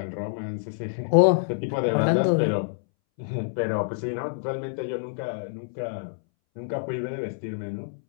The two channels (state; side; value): silent; right; 60 dB below the other